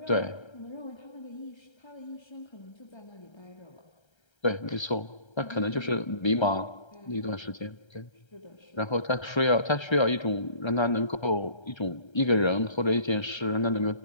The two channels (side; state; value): right; late; 1.3 ms